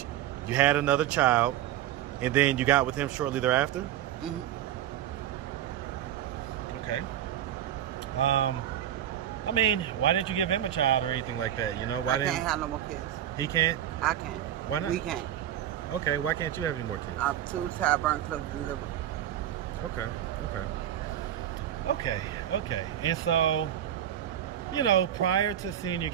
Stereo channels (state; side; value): quieter; left; 11.2 dB